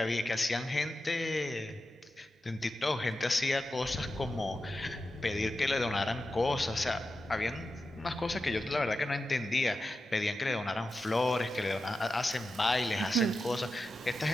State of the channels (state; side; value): normal; both; correlation 0.91